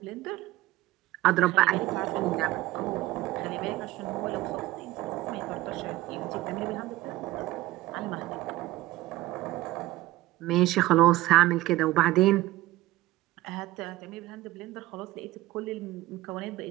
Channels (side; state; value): left; quieter; 17.1 dB